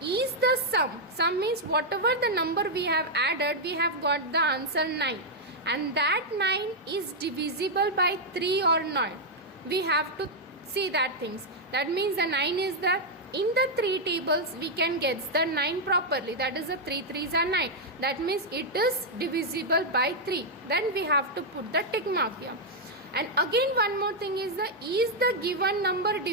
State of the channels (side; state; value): both; normal; correlation -0.02